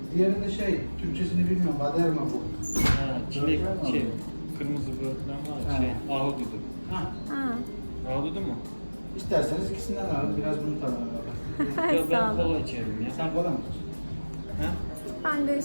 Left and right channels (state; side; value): inverted; both; correlation -1.00